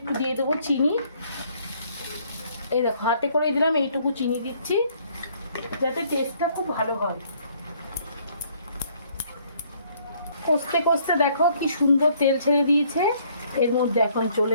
দিয়ে দেবো চিনি। এই দেখো হাতে করে দিলাম, এইটুকু চিনি দিচ্ছি। যাতে টেস্টটা খুব ভালো হয়। কষতে কষতে দেখো কি সুন্দর তেল ছেড়ে দিয়েছে। এর মধ্যে এখন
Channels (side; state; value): both; inverted; correlation -0.64